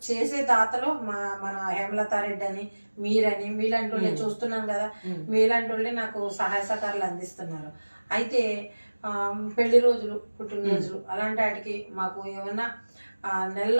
చేసే దాతలో మన హేమలతారెడ్డి అని, మీరని, మీలాంటి వాళ్ళే చూస్తున్నాను కదా, మీలాంటి వాళ్ళే నాకు సహాయ సహకారాలు అందిస్తున్నారు. అయితే పెళ్లి రోజులు, పుట్టినరోజులు అలాంటి వాటికి మాకు ఏమన్నా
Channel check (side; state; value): both; inverted; correlation -1.00